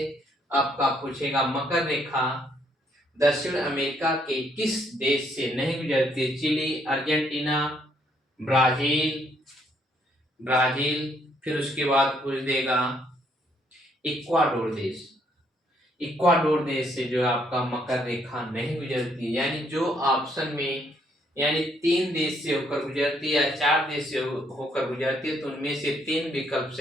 आपका पूछेगा मकर रेखा दक्षिण अमेरिका के किस देश से नहीं गुजरती? चिली, अर्जेंटीना, ब्राजील, फिर उसके बाद पूछ देगा इक्वाडोर देश। इक्वाडोर देश से जो आपका मकर रेखा नहीं गुजरती, यानी जो ऑप्शन में यानी 3 देश से होकर गुजरती है या 4 देश से होकर गुजरती है, तो उनमें से 3 विकल्प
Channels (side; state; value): both; normal; correlation 0.70